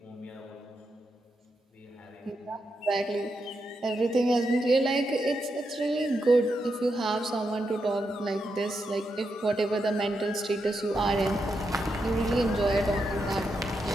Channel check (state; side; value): normal; both; correlation 0.84